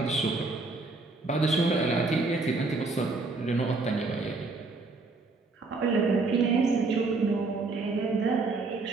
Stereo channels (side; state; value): left; quieter; 3.7 dB